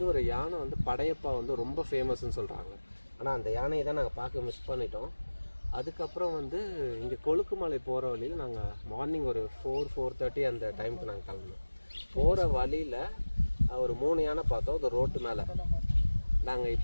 ஒரு யானை வந்து படையப்பா வந்து ரொம்ப ஃபேமஸ்ன்னு சொல்கிறாங்க. ஆனால் அந்த யானையை தான் நாங்கள் பார்க்க மிஸ் பண்ணிட்டோம். அதுக்கப்புறம் வந்து இங்கே கொழுக்குமலை போகிற வழியில் நாங்கள் மார்னிங் ஒரு 4-4:30 அந்த டைமுக்கு நாங்கள் கிளம்புனோம். போகிற வழியில் ஒரு 3 யானை பார்த்தோம். அது ரோட்டு மேலே. நாங்கள்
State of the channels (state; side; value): inverted; both; correlation -1.00